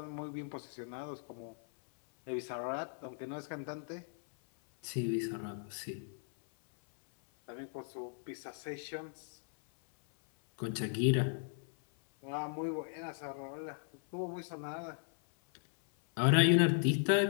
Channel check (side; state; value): right; silent; 53 dB below the other